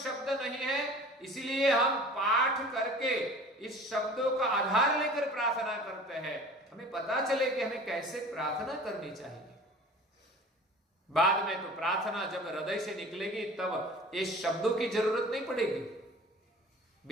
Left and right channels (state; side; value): normal; both; correlation 0.43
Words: नहीं है, इसीलिए हम पाठ करके इस शब्दों का आधार लेकर प्रार्थना करते हैं। हमें पता चले कि हमें कैसे प्रार्थना करनी चाहिए। बाद में तो प्रार्थना जब हृदय से निकलेगी तब इस शब्दों की जरूरत नहीं पड़ेगी,